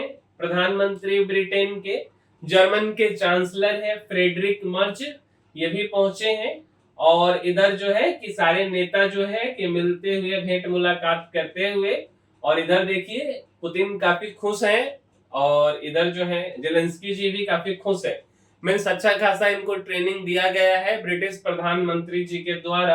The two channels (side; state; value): both; identical; correlation 1.00